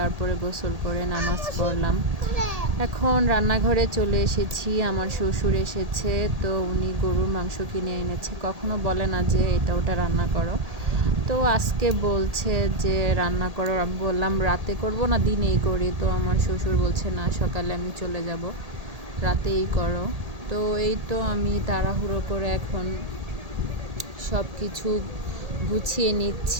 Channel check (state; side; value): late; left; 1.8 ms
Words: গোসল করে নামাজ পড়লাম। এখন রান্নাঘরে চলে এসেছি, আমার শ্বশুর এসেছে, তো উনি গরুর মাংস কিনে এনেছে। কখনো বলে না যে এটা ওটা রান্না করো, তো আজকে বলছে যে রান্না করো। আমি বললাম রাতে করব না দিনেই করি, তো আমার শ্বশুর বলছে না সকালে আমি চলে যাব, রাতেই করো। তো এই তো আমি তাড়াহুড়ো করে এখন সব কিছু গুছিয়ে